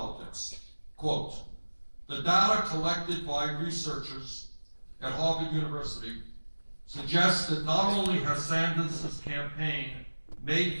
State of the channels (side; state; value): both; inverted; correlation -1.00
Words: Quote, the data collected by researchers at Harvard University suggests that not only has Sanders' campaign